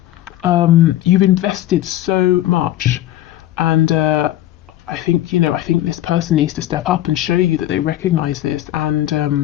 you've invested so much, and I think this person needs to step up and show you that they recognize this, and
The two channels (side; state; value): right; quieter; 13.8 dB